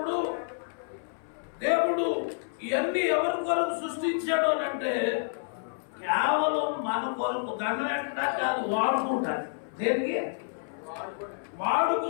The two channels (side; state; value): right; silent; 59 dB below the other